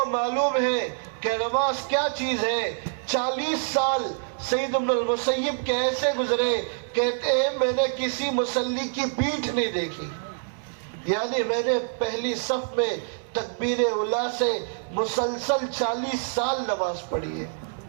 معلوم ہے کہ نماز کیا چیز ہے. 40 سال سعید بن المسیب کے ایسے گزرے، کہتے ہیں میں نے کسی مصلی کی پیٹھ نہیں دیکھی، یعنی میں نے پہلی صف میں تکبیر اولیٰ سے مسلسل 40 سال نماز پڑھی ہے.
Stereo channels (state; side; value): silent; left; digital silence